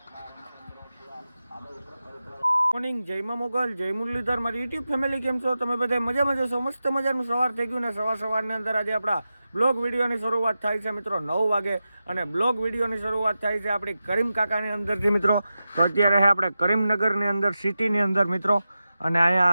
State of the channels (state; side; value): inverted; both; correlation -0.92